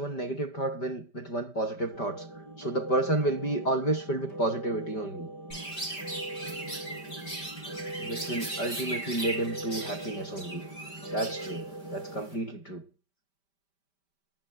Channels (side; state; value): right; late; 5.1 ms